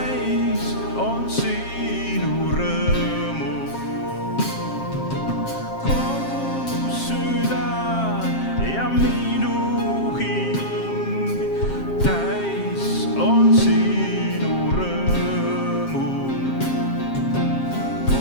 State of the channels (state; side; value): late; right; 7.5 ms